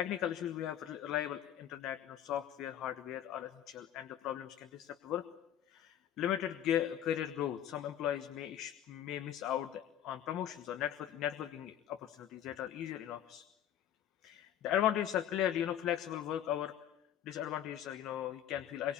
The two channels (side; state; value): right; quieter; 10.7 dB